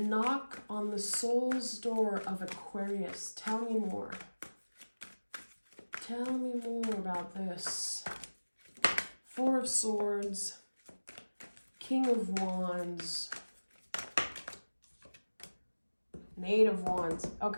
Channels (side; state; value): both; inverted; correlation -1.00